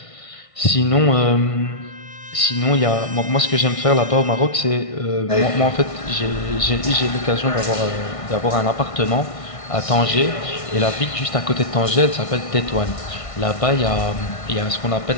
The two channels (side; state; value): right; late; 1.6 ms